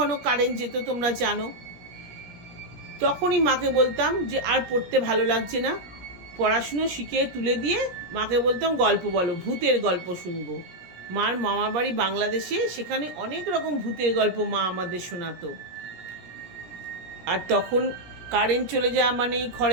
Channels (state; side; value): late; left; 17 ms